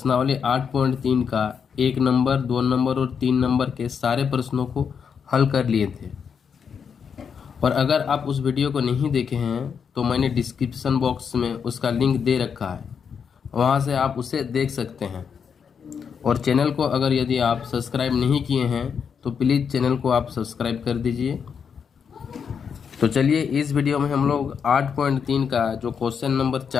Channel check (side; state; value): right; quieter; 6.8 dB